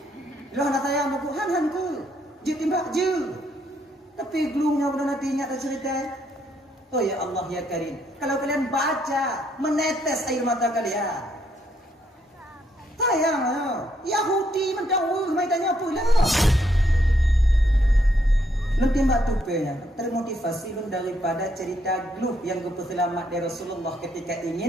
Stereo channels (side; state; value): both; normal; correlation 0.73